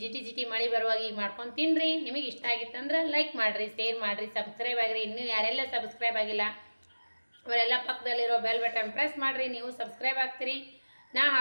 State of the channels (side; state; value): both; inverted; correlation -1.00